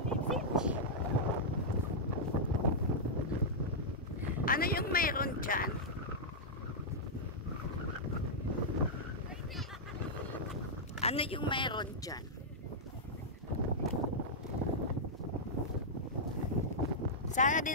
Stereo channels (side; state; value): both; normal; correlation -0.09